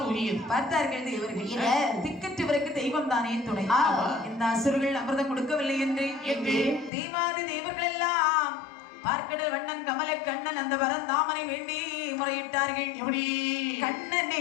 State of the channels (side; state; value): right; drops out; at 6.9 s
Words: உரியது. பார்த்தார்கள் இவர்கள் திக்கற்றவருக்கு தெய்வம் தானே துணை. இந்த அசுரர்கள் அமிர்தம் கொடுக்கவில்லை என்று தெய்வாதி தேவர்கள் எல்லாம் பார்க்கடல் வண்ணன் கமல கண்ணன் அந்த வரந்தாமனை வேண்டி முறையிட்டார்கள். எப்படி? கண்ணனை